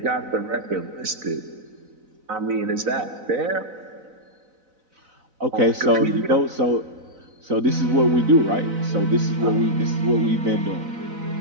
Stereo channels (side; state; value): left; late; 4.0 ms